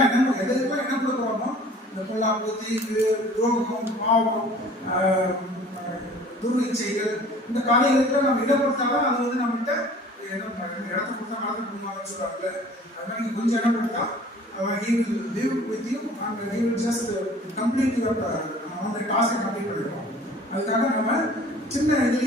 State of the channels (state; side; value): normal; both; correlation 0.49